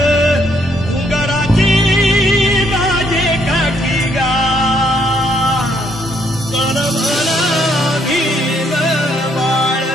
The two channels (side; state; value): both; normal; correlation 0.71